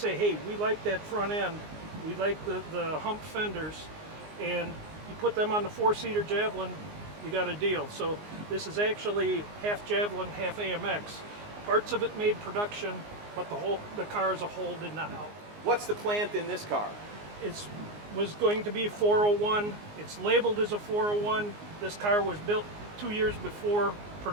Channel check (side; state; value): left; late; 19 ms